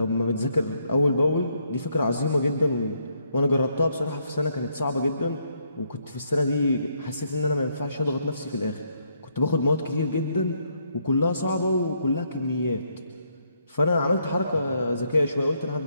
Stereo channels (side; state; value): both; inverted; correlation -0.74